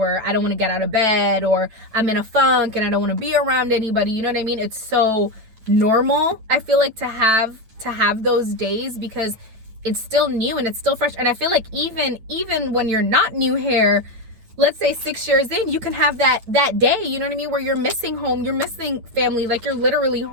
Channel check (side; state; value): left; late; 9.1 ms